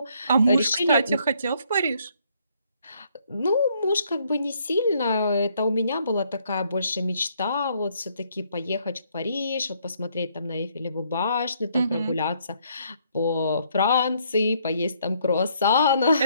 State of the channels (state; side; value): inverted; both; correlation -0.69